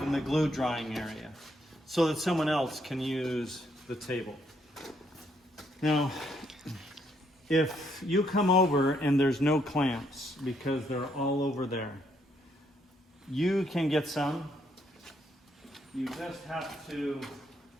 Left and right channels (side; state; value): both; normal; correlation 0.73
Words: in the glue drying area, so that someone else can use the table. Now, if you come over and there's no clamps because they're all over there, you can get some. You just have to